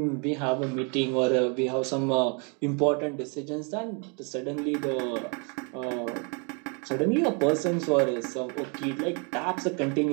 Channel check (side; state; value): left; quieter; 35.9 dB